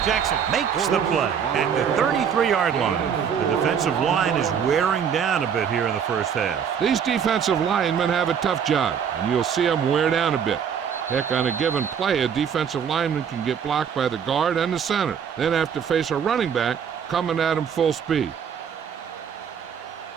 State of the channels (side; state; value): left; quieter; 7.6 dB